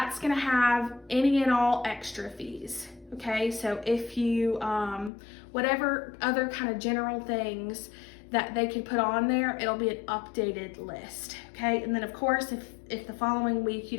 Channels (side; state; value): right; drops out; at 5.1 s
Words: gonna have any and all extra fees, okay? So if you, whatever other kind of general things that they could put on there, it'll be an updated list, okay? And then of course, if the following week you